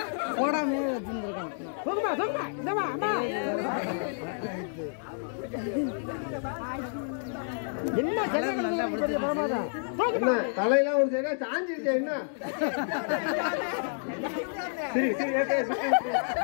என்ன தலையெல்லாம் ஒரு சைடா சாஞ்சிருச்சு. என்ன சரி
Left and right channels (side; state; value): right; silent; digital silence